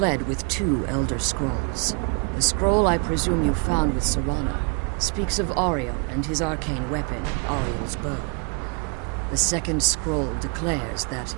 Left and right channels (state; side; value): quieter; left; 36.8 dB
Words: with 2 Elder Scrolls. The scroll I presume you found with Serana speaks of Ariel and his arcane weapon, Ariel's bow. The second scroll declares that